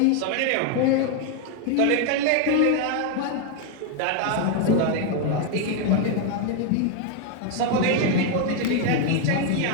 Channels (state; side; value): different; both; correlation 0.01